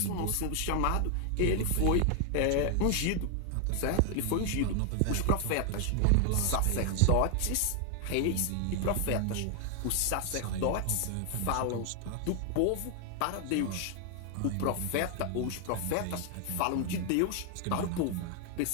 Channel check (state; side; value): different; both; correlation 0.00